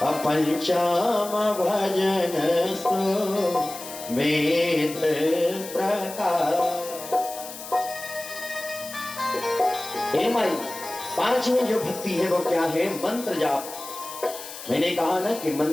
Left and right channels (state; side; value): noise; left; hiss, 12 dB below the sound